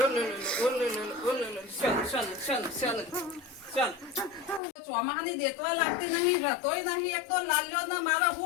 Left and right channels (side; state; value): right; drops out; at 4.6 s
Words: ચોમાહાની દેતવા લાગતી નહીં રતોય નહીં એક તો લાલ્યો ને મારે